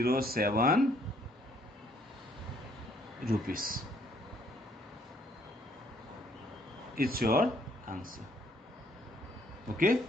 rupees. It's your answer. Okay,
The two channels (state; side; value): normal; both; correlation 0.65